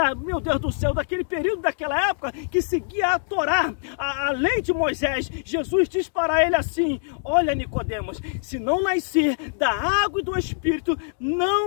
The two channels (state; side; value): silent; right; digital silence